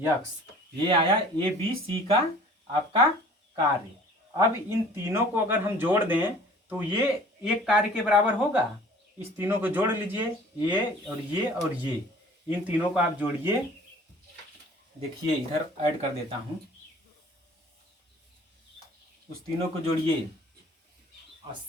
ये आया ए बी सी का आपका कार्य। अब इन तीनों को अगर हम जोड़ दें तो ये एक कार्य के बराबर होगा, इस तीनों को जोड़ लीजिए, ये और ये और ये, इन तीनों को आप जोड़िए। देखिए इधर ऐड कर देता हूँ, उस तीनों को जोड़िए,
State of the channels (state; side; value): normal; both; correlation 0.49